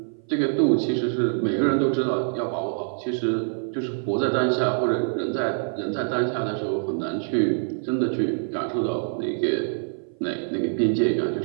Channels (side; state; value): left; silent; 58 dB below the other